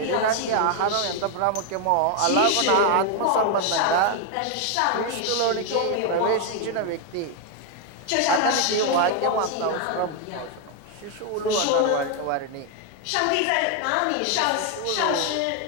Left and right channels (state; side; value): different; both; correlation 0.01